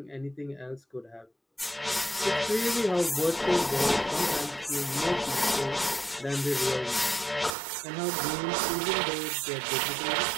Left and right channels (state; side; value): drops out; left; at 7.6 s